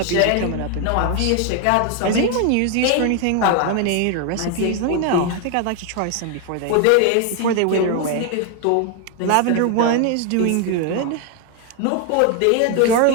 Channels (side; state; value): both; different; correlation 0.01